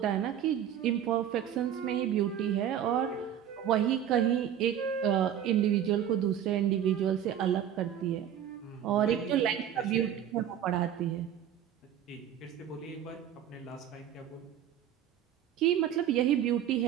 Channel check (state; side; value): quieter; left; 9.9 dB